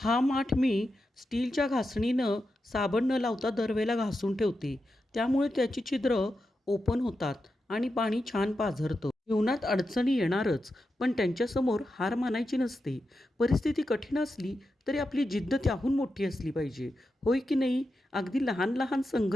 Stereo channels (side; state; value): both; normal; correlation 0.89